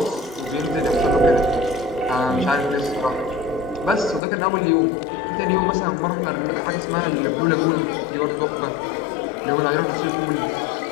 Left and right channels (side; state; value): right; drops out; at 4.2 s